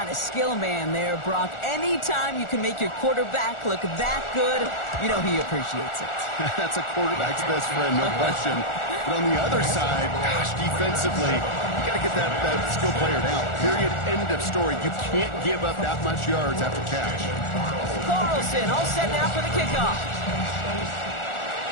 the skill man there, Brock. Anytime you can make your quarterback look that good, you know he appreciates it. That's a quarterback's best friend, no question. But on the other side, gosh, defensively, you got to get that skill player down. Period. End of story. You can't give up that much yards after catch. Carlson all set now for the kickoff.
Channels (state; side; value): late; right; 1.4 ms